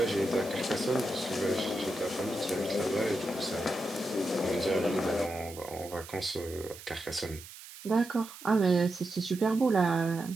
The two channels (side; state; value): right; noise; hiss, 16 dB below the sound